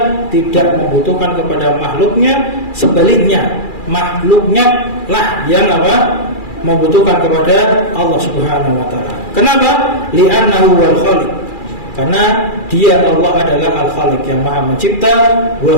tidak membutuhkan kepada makhluknya. Sebaliknya, makhluknya lah yang apa? Membutuhkan kepada Allah Subhanahu wa ta'ala. Kenapa? Li'annahu wal khaliq, karena dia Allah adalah al-khaliq yang maha mencipta.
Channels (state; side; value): late; right; 2.4 ms